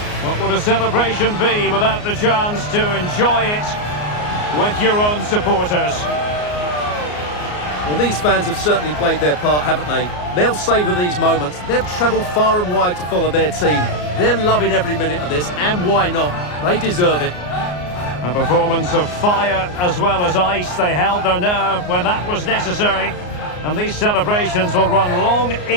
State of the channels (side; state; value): right; late; 34 ms